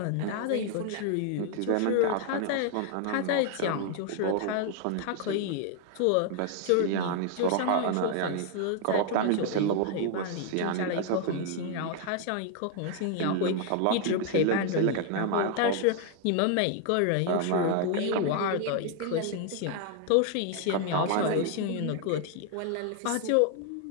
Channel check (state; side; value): different; both; correlation 0.00